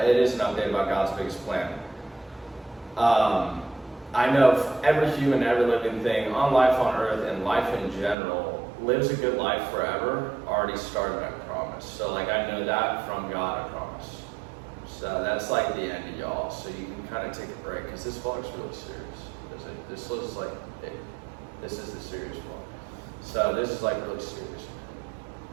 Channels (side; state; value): left; drops out; at 8.2 s